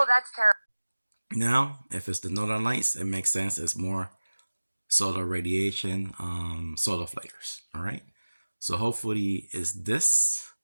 that's terrible. Now, if it's the northern lights, it makes sense. It's more solar radiation, solar flares. All right. So hopefully, it's this,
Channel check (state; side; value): inverted; both; correlation -1.00